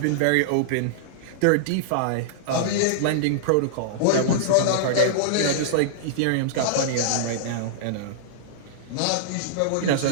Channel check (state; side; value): different; both; correlation -0.02